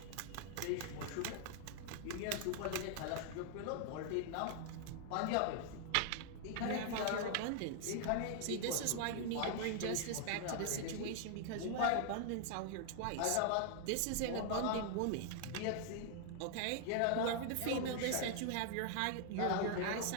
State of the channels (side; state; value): both; different; correlation 0.00